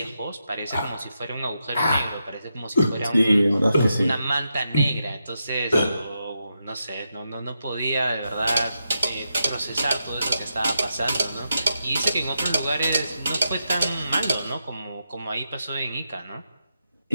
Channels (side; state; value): both; inverted; correlation -0.86